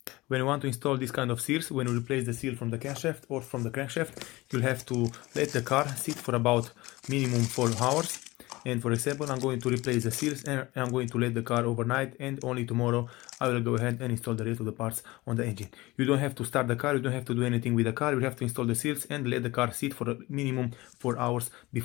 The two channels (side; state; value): right; quieter; 20.5 dB